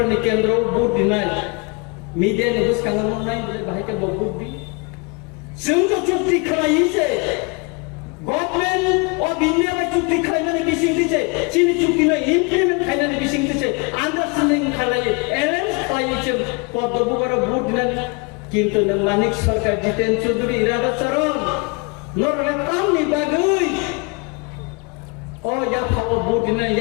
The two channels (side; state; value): right; quieter; 31.1 dB